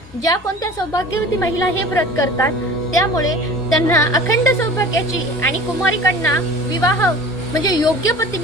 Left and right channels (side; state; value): both; normal; correlation 0.41